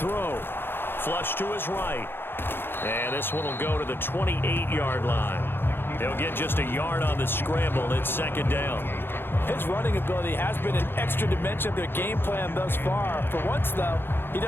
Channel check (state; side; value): late; right; 0.10 ms